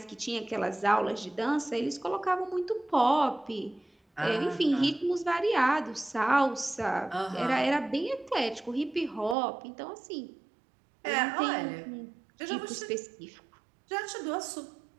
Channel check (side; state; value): left; drops out; at 9.3 s